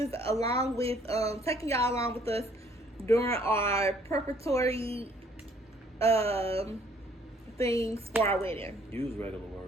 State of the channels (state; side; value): normal; both; correlation 0.61